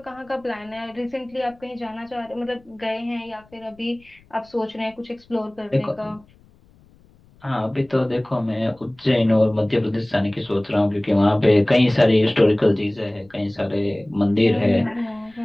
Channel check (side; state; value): left; noise; rumble, 29 dB below the sound